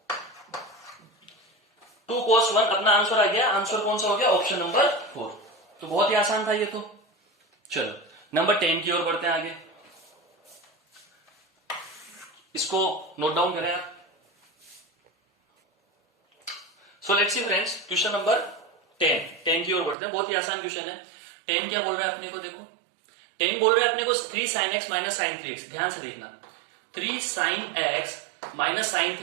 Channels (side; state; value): left; drops out; at 20.0 s